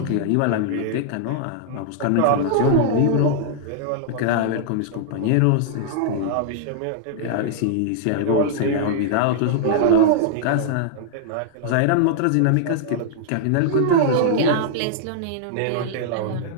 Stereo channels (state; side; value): different; both; correlation -0.01